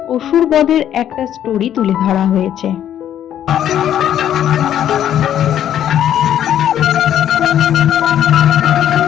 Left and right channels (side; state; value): right; quieter; 10.6 dB